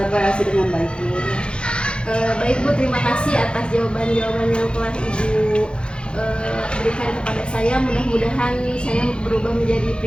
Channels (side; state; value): right; late; 0.054 ms